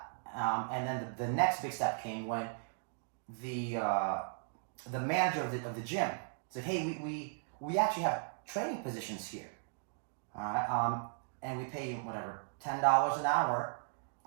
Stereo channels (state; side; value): silent; left; digital silence